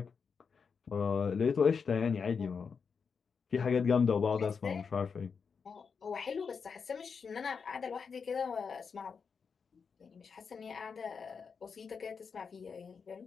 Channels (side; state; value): right; quieter; 5.8 dB